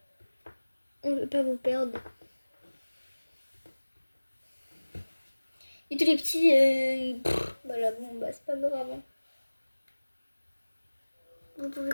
On veut pas vous perdre. Et tous les petits, voilà, bon, bah, c'est pas grave. Hein. Vous pouvez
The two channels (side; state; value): both; inverted; correlation -1.00